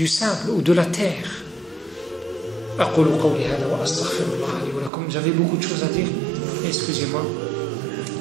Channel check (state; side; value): drops out; left; at 4.9 s